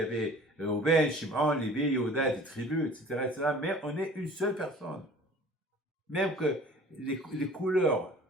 avait Reuben, Shimon, Lévi, Yehuda, des tribus, etc. Mais on est une seule personne. Même que les couleurs,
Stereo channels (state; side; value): normal; both; correlation 0.47